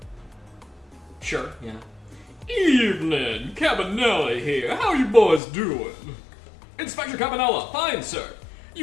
Sure, yeah. Evening, Cabanelli here. How you boys doing? Inspector Cabanella, fine, sir.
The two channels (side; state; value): right; drops out; at 5.4 s